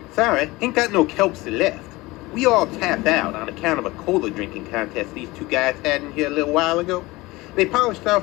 Sorry, ain't got no Kelpsie left. We all tapped out on account of a cola drinking contest these two guys had in here a little while ago. They polished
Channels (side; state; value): right; quieter; 21.0 dB